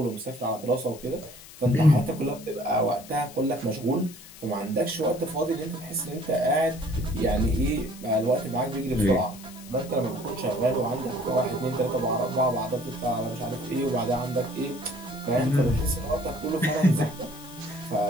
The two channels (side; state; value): left; noise; hiss, 18 dB below the sound